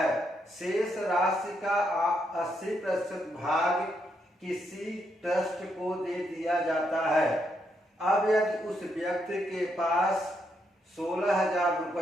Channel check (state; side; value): normal; both; correlation 0.78